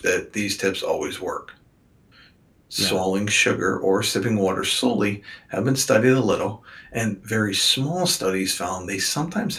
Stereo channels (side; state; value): both; identical; correlation 1.00